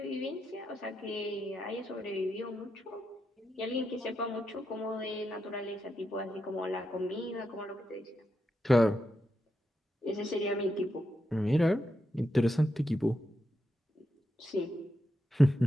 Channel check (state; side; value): normal; both; correlation 0.85